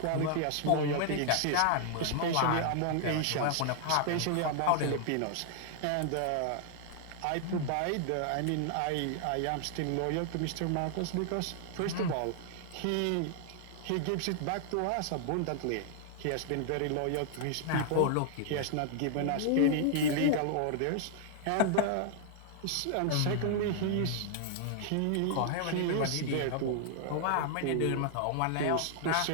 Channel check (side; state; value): both; different; correlation 0.00